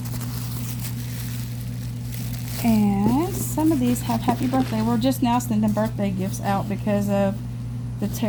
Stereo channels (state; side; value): identical; both; correlation 1.00